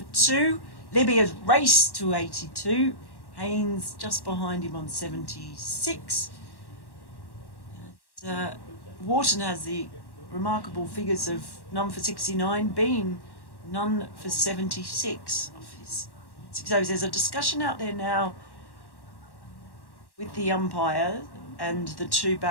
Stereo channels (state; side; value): late; right; 1.1 ms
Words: 2. Libby has raced to 82. Haynes just behind him on 76. And, Wharton has the remarkable figures of none for 69, Bean none for 76 of his 6 overs. There's a discussion out there now with the umpire and the 2